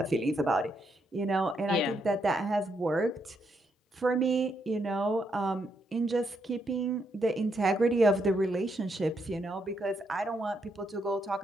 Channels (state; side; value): normal; both; correlation 0.78